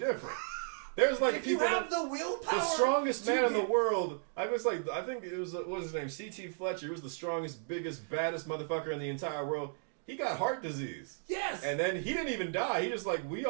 There's like if people you have the willpower, the strongest man in the world. I think it was what was his name? C.T. Fletcher. He was the strongest, biggest, baddest motherfucker in the entire world. He got heart disease. Yes. And then he didn't even die. He just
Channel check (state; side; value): silent; left; digital silence